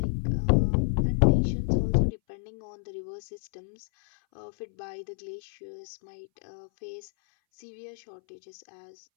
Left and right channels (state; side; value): silent; right; 58 dB below the other